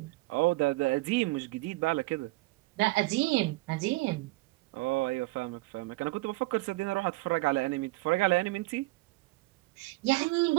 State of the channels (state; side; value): quieter; left; 21.6 dB